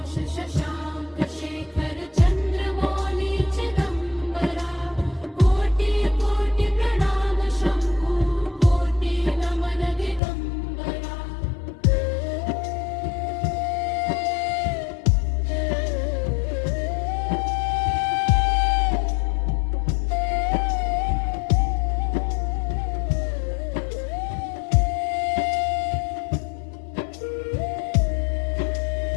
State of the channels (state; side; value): drops out; right; at 10.2 s